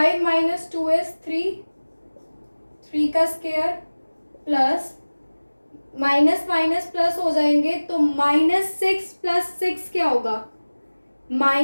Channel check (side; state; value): both; inverted; correlation -1.00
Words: माइनस 2 इज 3 का square plus minus minus plus हो जाएंगे, तो -6 प्लस 6 क्या होगा?